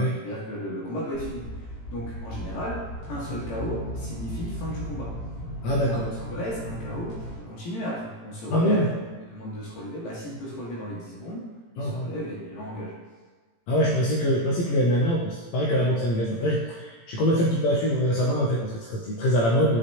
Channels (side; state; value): right; late; 18 ms